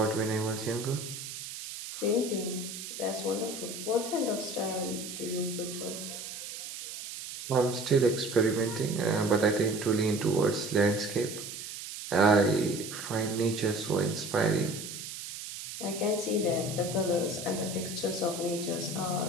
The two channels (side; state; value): right; noise; hiss, 9 dB below the sound